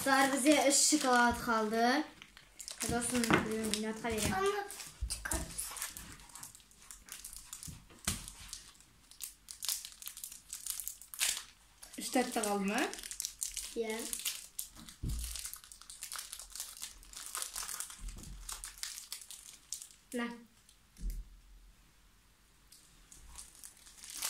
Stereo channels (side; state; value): both; identical; correlation 1.00